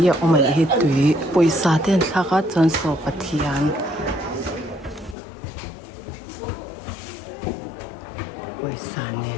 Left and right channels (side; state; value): right; drops out; at 5.2 s